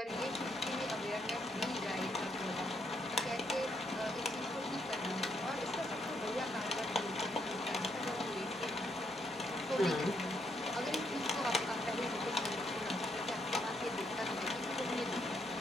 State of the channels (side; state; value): both; normal; correlation 0.75